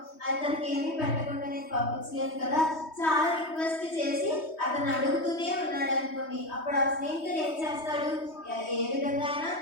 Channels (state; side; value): late; right; 3.2 ms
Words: అతనికి ఏమీ పెట్టకుండా నేను పంపించలేను కదా, చాలా రిక్వెస్ట్ చేసి అతను అడుగుతూనే ఉన్నాడు అనుకోండి, అప్పుడు ఆ స్నేహితుడు ఏం చేస్తాడు, ఏ విధంగా అయినా